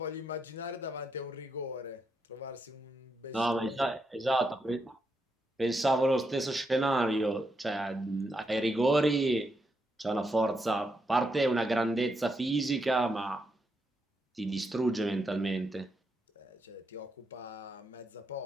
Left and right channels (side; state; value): both; normal; correlation 0.82